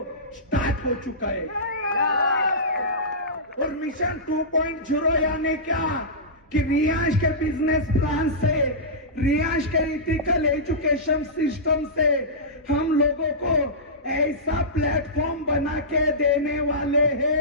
स्टार्ट हो चुका है। और मिशन 2.0 यानी क्या कि रियांश के बिजनेस प्लान से रियांश के इथिकल एजुकेशन सिस्टम से हम लोगों को ऐसा प्लेटफॉर्म बना के देने वाले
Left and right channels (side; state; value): both; normal; correlation -0.18